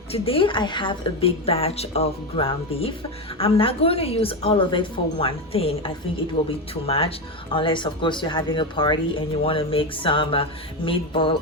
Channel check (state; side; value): normal; both; correlation 0.14